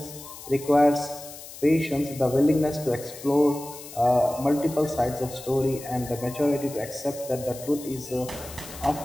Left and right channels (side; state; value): left; noise; hiss, 15 dB below the sound